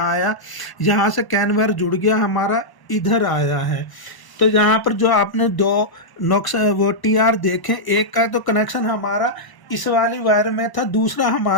आया, यहाँ से कैन वायर जुड़ गया हमारा, इधर आया है। तो यहाँ पर जो आपने दो नॉक्स वो टीआर देखें, एक का तो कनेक्शन हमारा इस वाली वायर में था, दूसरा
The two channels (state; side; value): late; right; 1.0 ms